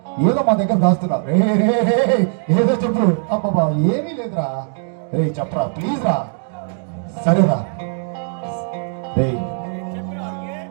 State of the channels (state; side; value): silent; left; 61 dB below the other